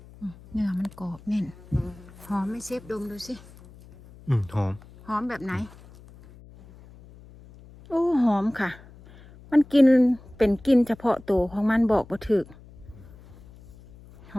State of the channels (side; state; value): left; noise; hum, 22 dB below the sound